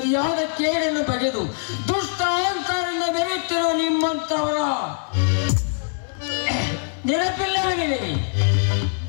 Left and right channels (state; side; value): silent; right; digital silence